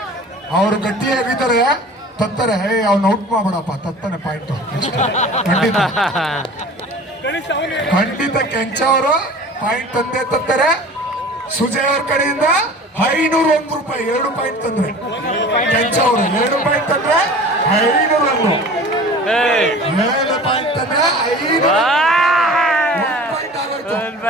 ಅವ್ರು ಗಟ್ಟಿಯಾಗಿದ್ದಾರೆ, ತತ್ತಾರೆ. ಅವ್ನ ಔಟ್ ಮಾಡ್ಬಿಡಪ್ಪ, ತತ್ತಾನೆ ಪಾಯಿಂಟ್. ಖಂಡಿತ ಕೆಂಚ ಅವರು ಪಾಯಿಂಟ್ ತಂದೆ ತತ್ತಾರೆ. ಸುಜಯ್ ಅವ್ರ ಕಡೆಯಿಂದ 501 ರೂಪಾಯಿ 2 ಪಾಯಿಂಟ್ ತಂದ್ರೆ. ಕೆಂಚ ಅವರು 2 ಪಾಯಿಂಟ್ ತಂದ್ರೆ 501. 7 ಪಾಯಿಂಟ್ ತಂದ್ರೆ 5 ಪಾಯಿಂಟ್ ಆಗೋಯ್ತು.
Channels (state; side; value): normal; both; correlation 0.41